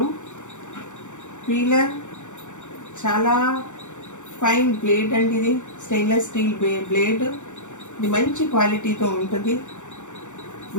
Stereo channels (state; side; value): late; right; 0.85 ms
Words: పీలర్ చాలా ఫైన్ బ్లేడ్ అండి. ఇది స్టెయిన్లెస్ స్టీల్ బ్లేడ్. ఇది మంచి క్వాలిటీతో ఉంటుంది.